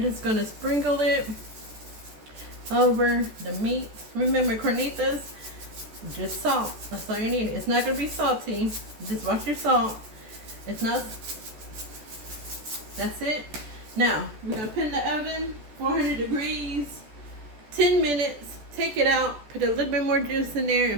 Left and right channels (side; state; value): left; late; 14 ms